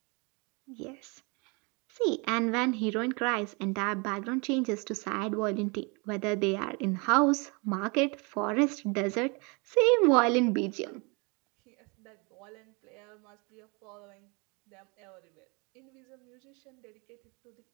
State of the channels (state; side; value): quieter; left; 30.4 dB